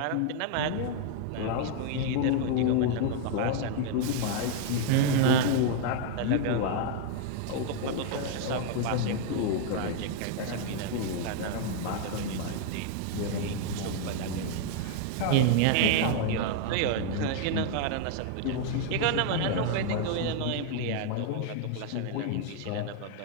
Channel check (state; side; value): different; both; correlation 0.00